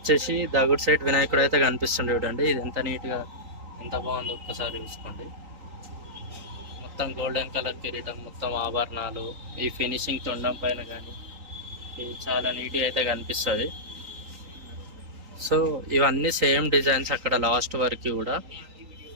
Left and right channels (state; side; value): late; left; 3.8 ms